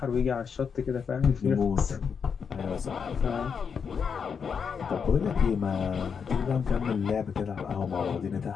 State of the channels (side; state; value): right; quieter; 6.4 dB